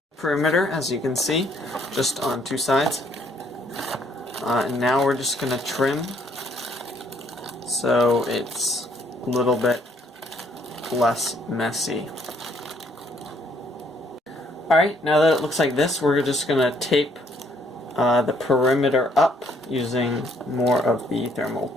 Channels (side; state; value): both; normal; correlation 0.67